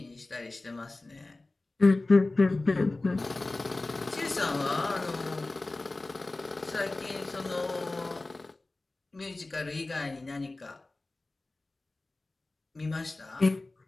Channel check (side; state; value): right; quieter; 3.1 dB